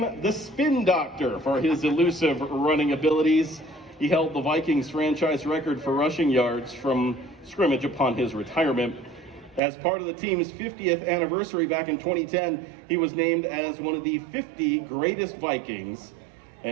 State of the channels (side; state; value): left; drops out; at 9.6 s